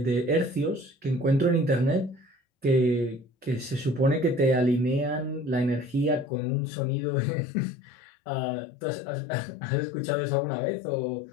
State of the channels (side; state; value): right; drops out; at 6.3 s